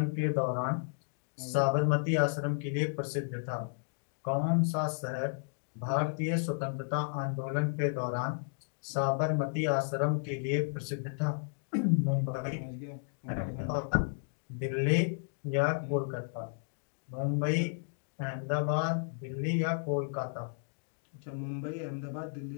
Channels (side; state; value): right; silent; digital silence